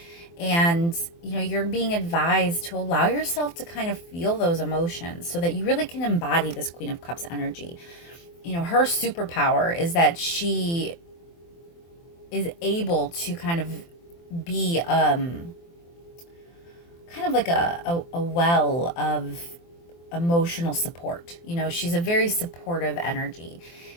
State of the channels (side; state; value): right; late; 24 ms